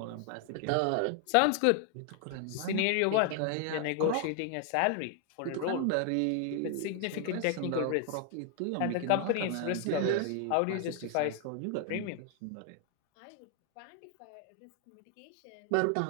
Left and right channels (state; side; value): different; both; correlation 0.00